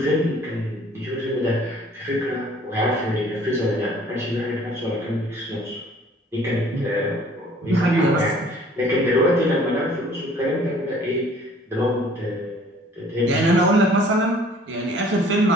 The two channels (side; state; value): both; normal; correlation 0.54